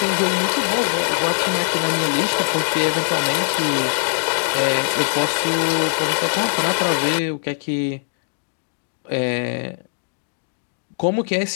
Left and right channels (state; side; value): silent; right; digital silence